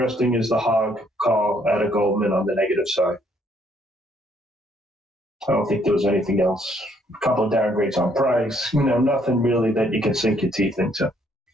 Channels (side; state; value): both; normal; correlation 0.68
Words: is the Hog call out of Goldman on the negative side. I don't think there was anything else. A couple of downgrades on price. Nothing really that you can sink your teeth into.